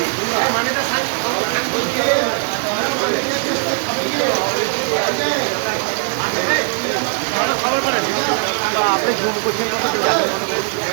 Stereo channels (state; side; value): quieter; left; 39.8 dB